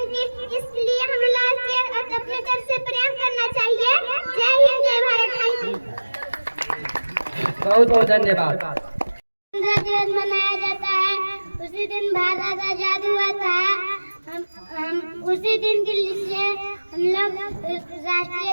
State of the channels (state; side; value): inverted; both; correlation -1.00